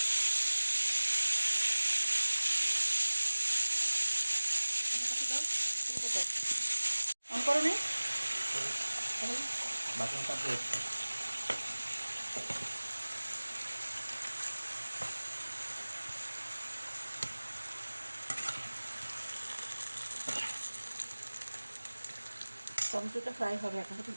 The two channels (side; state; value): both; inverted; correlation -1.00